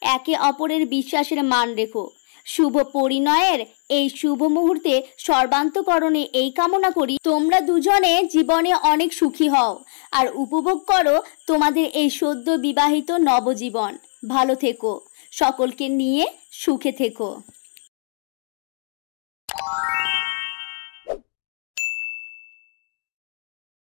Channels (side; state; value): right; silent; digital silence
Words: একে অপরের বিশ্বাসের মান রেখো। শুভ পরিণয়ের এই শুভ মুহূর্তে সর্বান্তকরণে এই কামনা করি, তোমরা দুজনে জীবনে অনেক সুখী হও আর উপভোগ করো তোমাদের এই সদ্য বিবাহিত নবজীবন। ভালো থেকো, সকলকে নিয়ে সুখে থেকো।